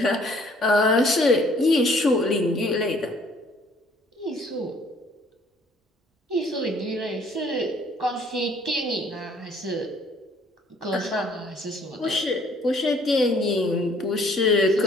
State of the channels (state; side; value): normal; both; correlation 0.59